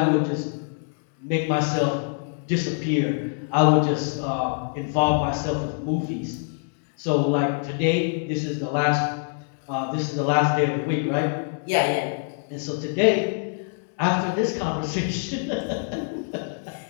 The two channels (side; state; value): right; silent; 62 dB below the other